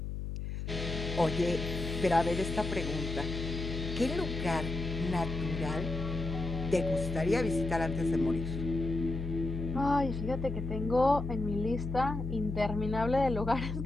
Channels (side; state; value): left; noise; hum, 5 dB below the sound